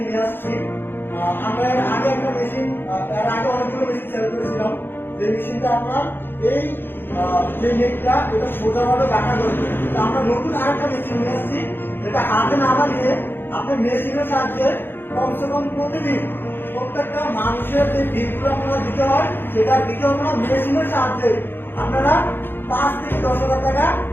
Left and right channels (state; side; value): late; right; 0.10 ms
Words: নিয়ে আসছি। আমরা এর আগে একটা মেশিন, এর আগে অনেকগুলো মেশিন সেল করেছিলাম। যে মেশিনটা আপনার এই যে নেটটা এটা সোজাভাবে বাঁকা করবে। আমরা নতুন আরেকটা মেশিন নিয়ে আসছি, যেটা হাতে না বানিয়ে আপনি মেশিনের সাহায্যে কমসে কম প্রতিদিন প্রত্যেকটা মানুষের যে বিলগুলো আপনারা দিতে হয় সেটা দিতে হবে না, মেশিনের সাহায্যে আপনারা 5 থেকে 10,000 টাকা